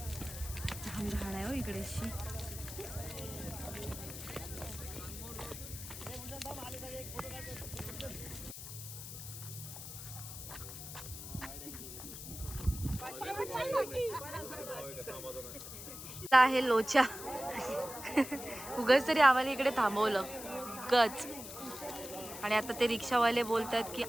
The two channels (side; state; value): left; noise; hiss, 10 dB below the sound